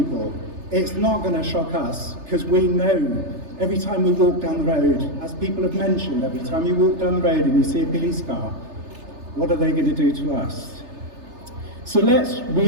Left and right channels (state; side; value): late; left; 3.3 ms